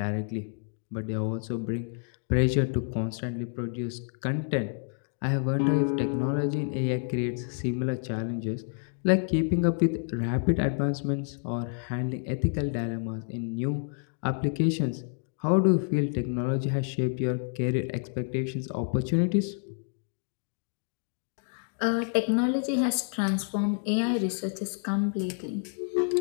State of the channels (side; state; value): right; silent; 59 dB below the other